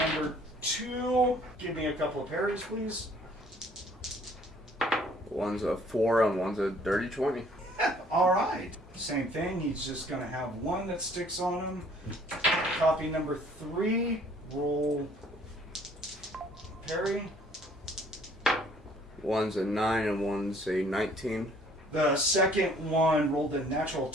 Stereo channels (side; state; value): both; normal; correlation 0.58